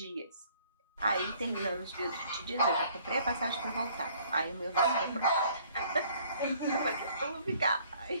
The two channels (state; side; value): inverted; both; correlation -0.59